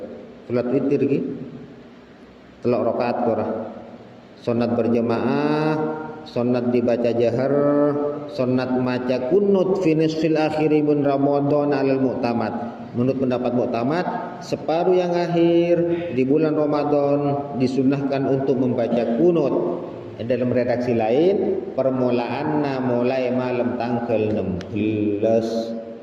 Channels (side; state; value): both; identical; correlation 1.00